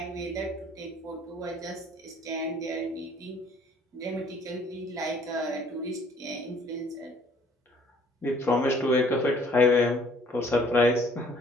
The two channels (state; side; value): normal; both; correlation 0.58